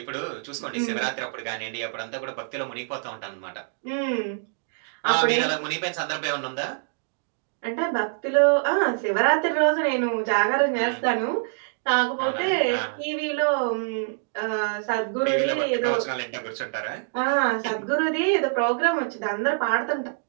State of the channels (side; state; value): left; silent; digital silence